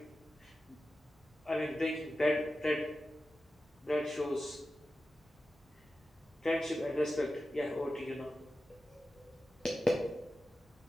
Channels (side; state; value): both; normal; correlation 0.93